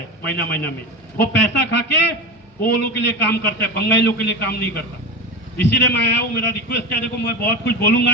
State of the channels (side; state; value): both; normal; correlation 0.23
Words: महीना महीना में, वो पैसा खा के वो लोग के लिए काम करता है, बंगाली लोग के लिए काम नहीं करता। इसीलिए मैं आया हूँ, मेरा रिक्वेस्ट है, देखो मैं बहुत कुछ